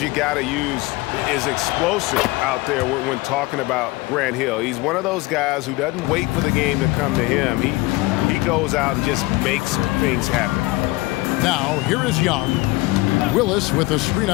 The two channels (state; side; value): quieter; right; 21.1 dB